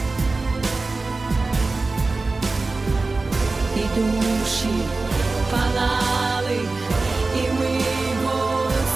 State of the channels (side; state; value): left; quieter; 3.6 dB